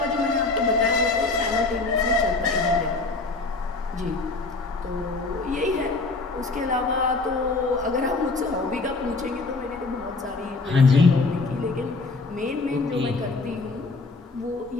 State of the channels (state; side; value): quieter; right; 3.6 dB